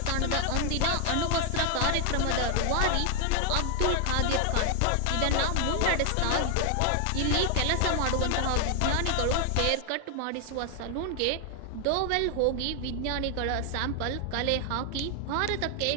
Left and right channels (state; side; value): different; both; correlation 0.00